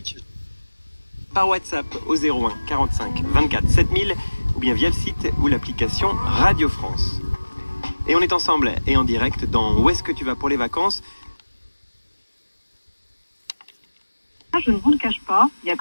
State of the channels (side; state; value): both; inverted; correlation -1.00